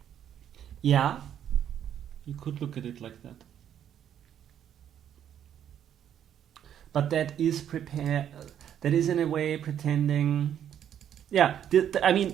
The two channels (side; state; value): left; quieter; 9.8 dB